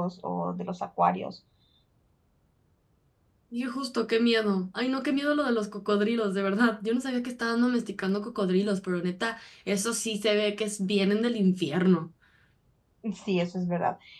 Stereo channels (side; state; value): both; identical; correlation 1.00